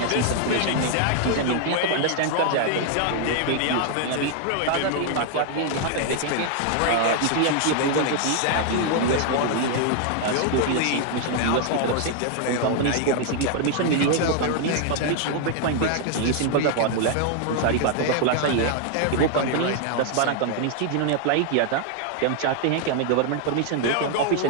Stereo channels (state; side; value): different; both; correlation 0.00